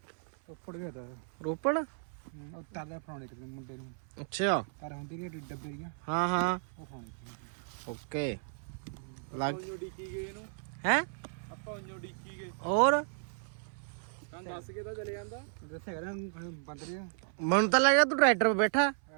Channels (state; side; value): silent; left; 55 dB below the other